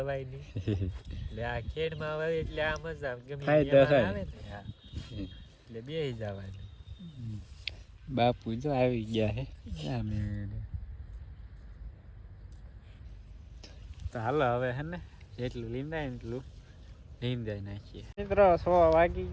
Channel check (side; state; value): both; identical; correlation 1.00